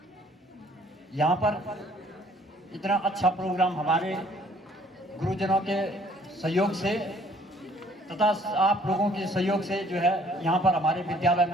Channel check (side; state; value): both; normal; correlation 0.59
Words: यहाँ पर इतना अच्छा प्रोग्राम हमारे गुरुजनों के सहयोग से तथा आप लोगों के सहयोग से जो है यहाँ पर हमारे विद्यालय